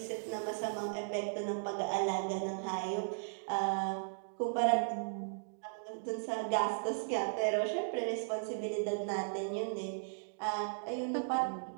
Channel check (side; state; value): left; silent; digital silence